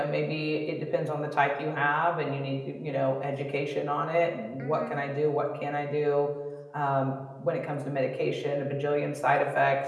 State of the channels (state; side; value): identical; both; correlation 1.00